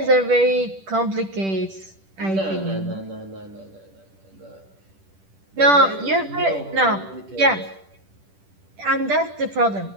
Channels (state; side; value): late; left; 10 ms